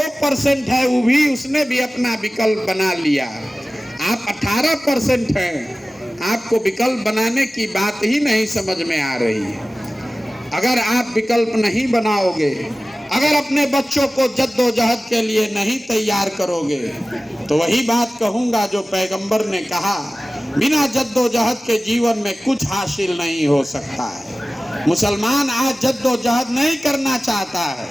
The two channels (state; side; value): normal; both; correlation 0.97